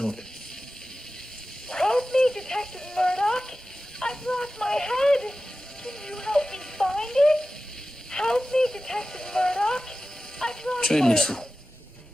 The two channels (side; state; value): both; normal; correlation 0.94